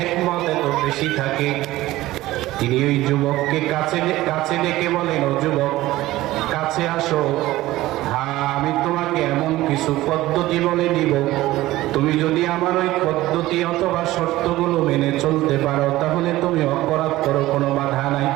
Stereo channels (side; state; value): left; quieter; 16.8 dB